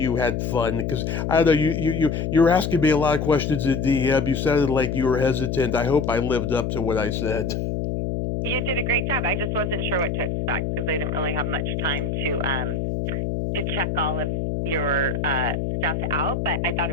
had fun because I don't know, you were asking me a lot of questions in DM. You sounded like you were hesitant. I hope I lived up to what I said. You did a great job. I just wasn't sure what to expect because I didn't really have much time to check all of your stuff out. But I thought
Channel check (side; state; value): left; noise; hum, 1 dB below the sound